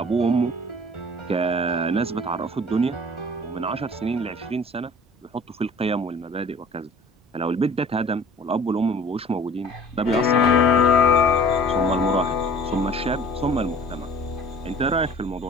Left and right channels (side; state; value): both; normal; correlation 0.48